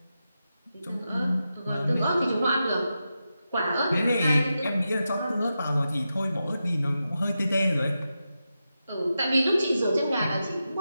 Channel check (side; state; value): both; inverted; correlation -0.89